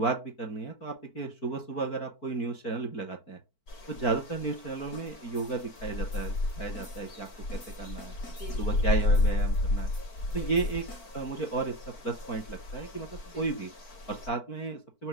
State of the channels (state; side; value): late; right; 4.5 ms